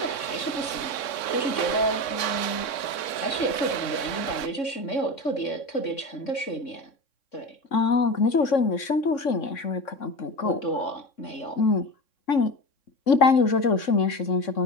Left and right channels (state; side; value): late; right; 3.6 ms